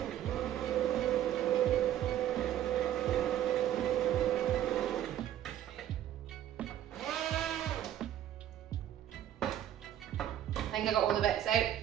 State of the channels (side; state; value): left; quieter; 11.5 dB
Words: I think I got all the bits out.